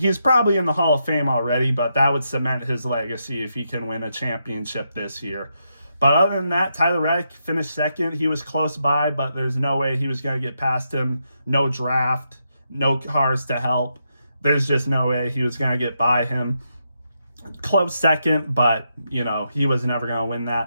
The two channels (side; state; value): both; inverted; correlation -0.82